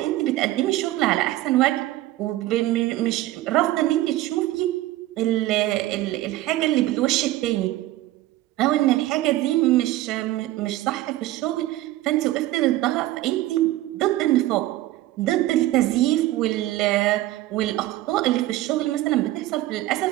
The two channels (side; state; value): left; quieter; 16.0 dB